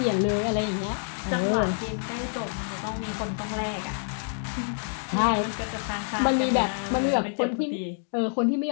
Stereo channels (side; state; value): right; silent; 60 dB below the other